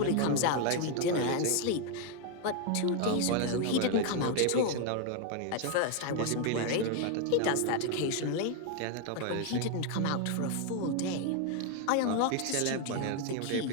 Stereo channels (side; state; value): both; different; correlation 0.01